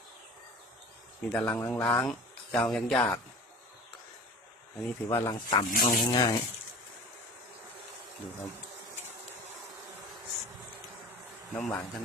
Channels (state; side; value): normal; both; correlation 0.40